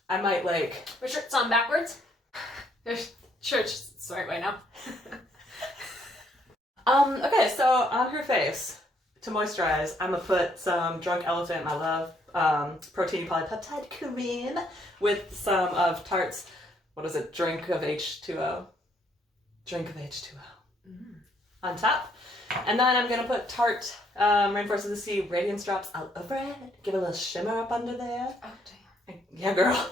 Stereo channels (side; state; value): both; normal; correlation 0.69